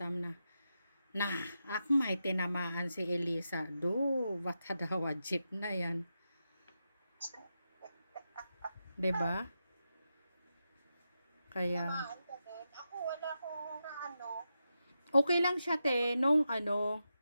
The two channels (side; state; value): both; inverted; correlation -0.88